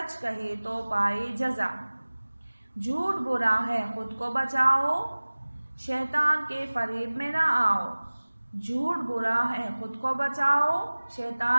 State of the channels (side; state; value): both; inverted; correlation -1.00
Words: کہے تو پائے جزا، جھوٹ برا ہے خود کو بچاؤ، شیطان کے فریب میں نہ آؤ، جھوٹ برا ہے خود کو بچاؤ،